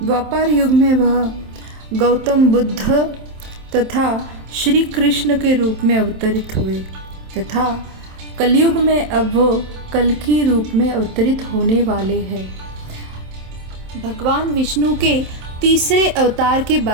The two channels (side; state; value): left; late; 27 ms